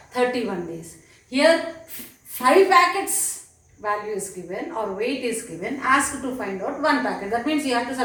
31 days. Here 5 packets value is given or weight is given, asked to find out 1 packet. That means you have to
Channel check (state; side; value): identical; both; correlation 1.00